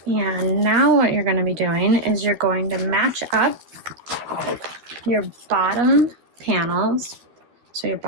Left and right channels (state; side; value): late; left; 12 ms